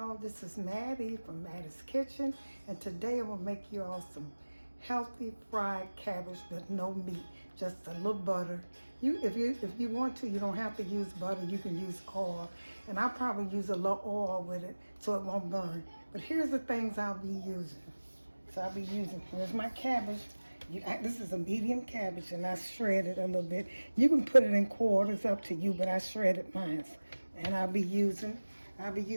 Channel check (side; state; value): both; inverted; correlation -1.00